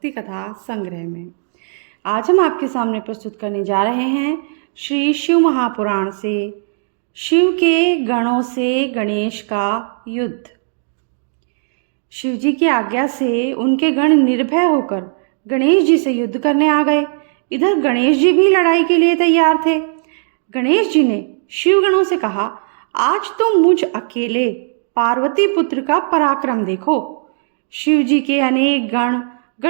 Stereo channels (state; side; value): silent; left; 68 dB below the other